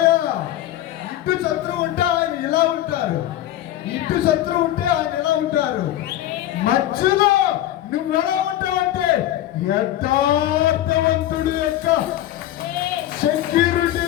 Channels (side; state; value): right; quieter; 13.3 dB